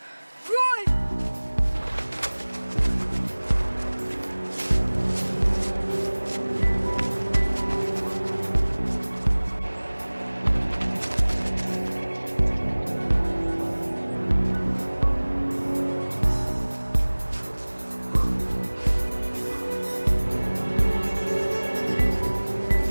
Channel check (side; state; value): both; inverted; correlation -1.00